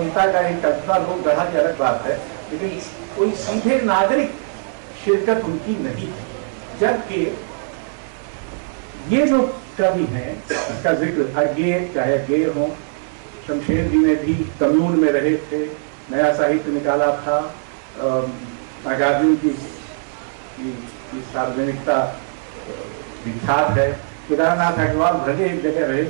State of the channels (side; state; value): left; silent; digital silence